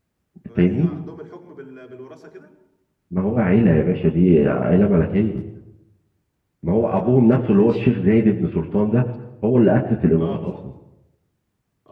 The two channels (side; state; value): both; identical; correlation 1.00